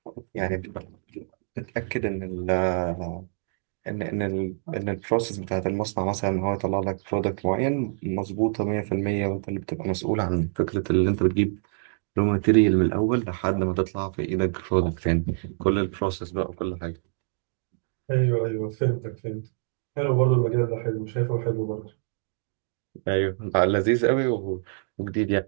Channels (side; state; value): left; silent; digital silence